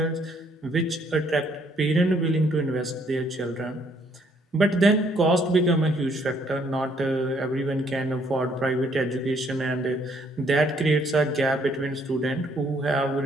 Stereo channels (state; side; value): normal; both; correlation 0.67